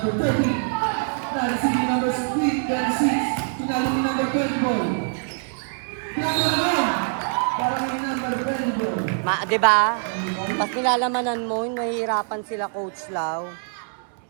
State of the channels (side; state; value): left; silent; digital silence